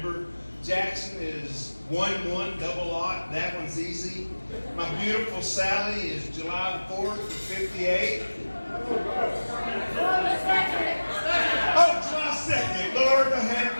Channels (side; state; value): both; inverted; correlation -1.00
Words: Jackson is 1-1, double aught. That one's easy. My beautiful Sally is July 4th of 58. Oh, July 2nd. Lord, have